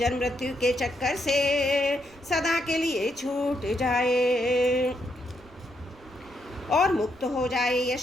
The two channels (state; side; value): noise; right; rumble, 25 dB below the sound